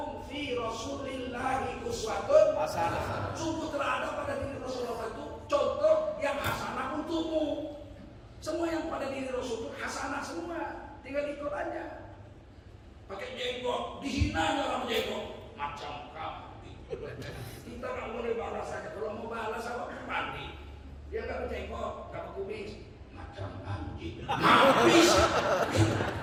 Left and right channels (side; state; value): both; identical; correlation 1.00